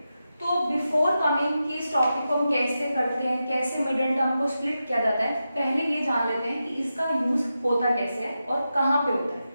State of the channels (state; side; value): inverted; both; correlation -0.90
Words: तो बिफोर कमिंग कि इस टॉपिक को हम कैसे करते हैं, कैसे मिडल टर्म को स्प्लिट किया जाता है, पहले ये जान लेते हैं कि इसका यूज होता कैसे है और कहाँ पे होता है।